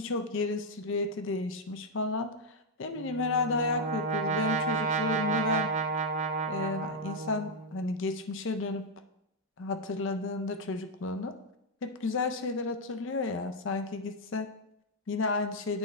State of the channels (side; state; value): both; normal; correlation 0.00